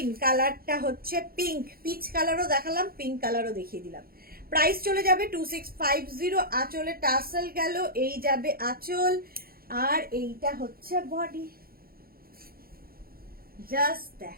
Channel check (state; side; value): late; left; 0.43 ms